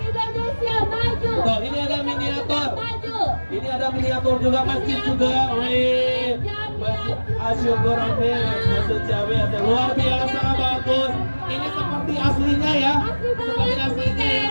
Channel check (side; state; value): both; inverted; correlation -1.00